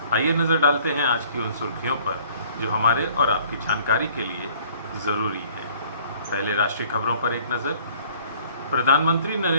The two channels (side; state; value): both; inverted; correlation -0.56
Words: आइए नज़र डालते हैं आज की उन सुर्खियों पर जो हमारे और आपकी जानकारी के लिए ज़रूरी है। पहले राष्ट्रीय खबरों पर एक नज़र। प्रधानमंत्री